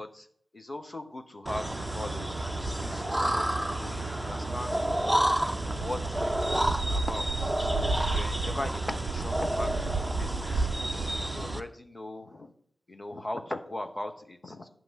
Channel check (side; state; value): both; normal; correlation 0.92